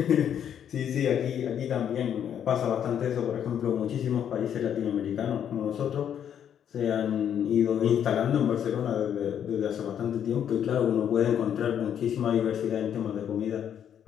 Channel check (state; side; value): quieter; right; 9.1 dB